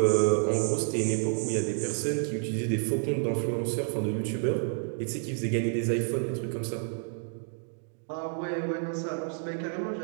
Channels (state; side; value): silent; left; 58 dB below the other